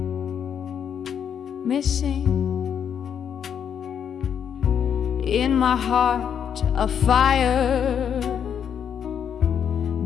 missing in my heart a fire,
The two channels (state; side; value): quieter; right; 8.2 dB